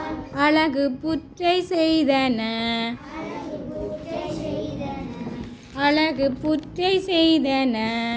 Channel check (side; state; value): both; identical; correlation 1.00